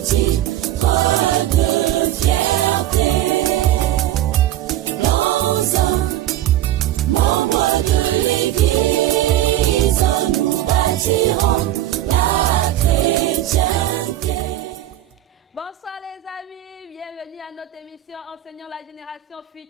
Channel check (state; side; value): quieter; left; 13.4 dB